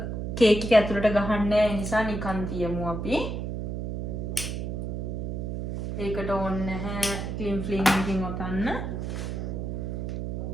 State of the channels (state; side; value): noise; right; hum, 4 dB below the sound